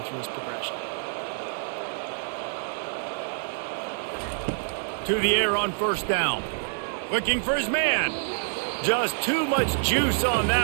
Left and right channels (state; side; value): silent; left; digital silence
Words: through his progression. To the air on first down. Looking for his man. Just too much juice on